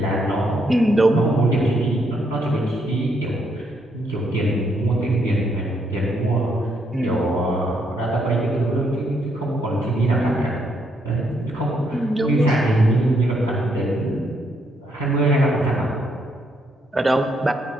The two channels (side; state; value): both; normal; correlation 0.74